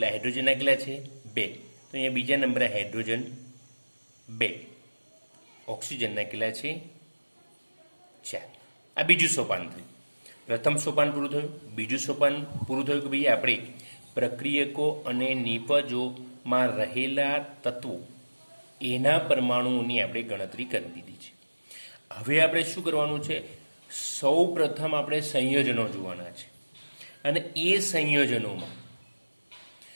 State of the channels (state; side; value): inverted; both; correlation -1.00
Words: હાઇડ્રોજનના કેટલા છે? 2. તો અહીંયા બીજા નંબરે હાઇડ્રોજન 2. ઓક્સિજનના કેટલા છે? 4. આ બીજું સોપાન થયું. પ્રથમ સોપાન પૂરું થયું. બીજું સોપાન પૂરું થયું કે ભાઈ આપણે પ્રક્રિયકો અને નિપજોમાં રહેલા તત્વો એના પરમાણુઓની આપણે ગણતરી કરી દીધી છે. હવે આપણે શું કરવાનું છે? સૌ પ્રથમ આપણે સંયોજનો જોવાના છે અને એ સંયોજનોમાં